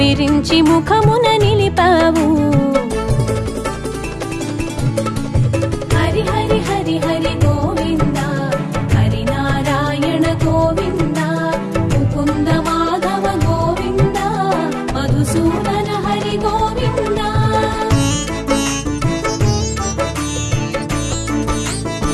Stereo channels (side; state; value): both; identical; correlation 1.00